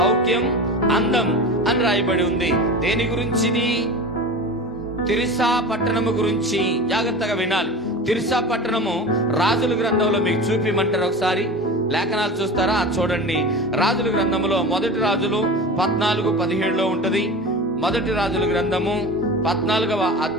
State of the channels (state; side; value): normal; both; correlation 0.32